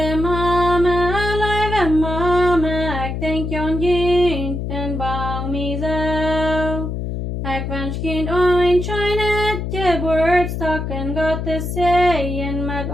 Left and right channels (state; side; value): noise; left; hum, 4 dB below the sound